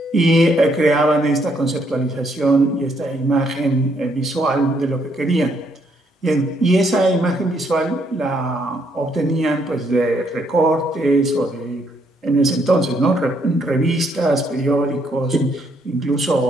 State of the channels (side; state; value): both; normal; correlation 0.72